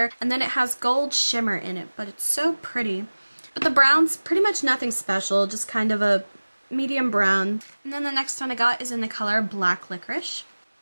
And then it has gold shimmer in it, but it's so pretty. But the brown's pretty much nothing special, just kind of a medium brown. And then the next one I got is in the color Black Licorice.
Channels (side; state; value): both; inverted; correlation -1.00